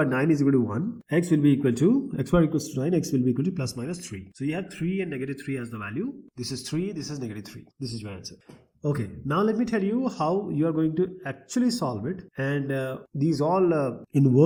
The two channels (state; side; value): identical; both; correlation 1.00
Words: 9 is equal to 1, x will be equal to, x squared equals to 9, x will be equal to plus minus 3. So you have 3 and negative 3 as the value, this is 3, this is negative 3, this is your answer. Okay, now let me tell you how you are going to actually solve it, and these all in